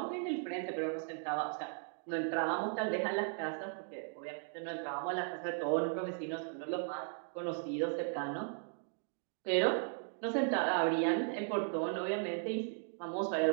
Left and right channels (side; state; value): left; silent; 53 dB below the other